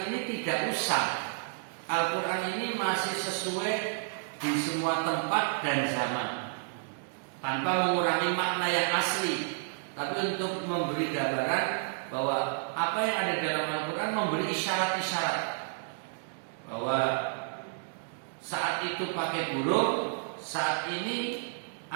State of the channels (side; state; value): left; silent; digital silence